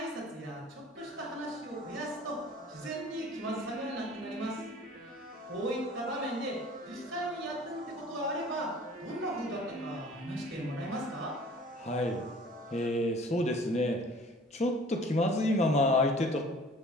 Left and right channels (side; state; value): both; normal; correlation 0.48